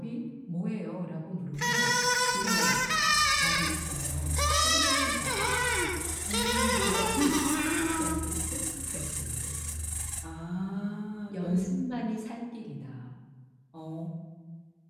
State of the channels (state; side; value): identical; both; correlation 1.00